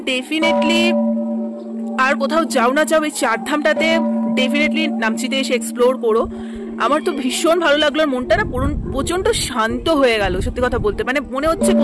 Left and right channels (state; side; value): identical; both; correlation 1.00